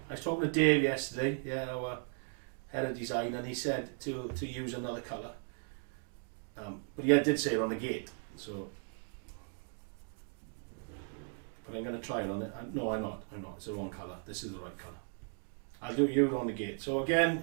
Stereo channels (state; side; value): silent; left; 53 dB below the other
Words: I was talking to Dave yesterday, yeah, our head of design, and he said to use another colour. But he did say it on the gate, so. But I'm going to try it on it. No, I'm not. It's the wrong colour. This is the right colour. I'll do it on the gate. So again,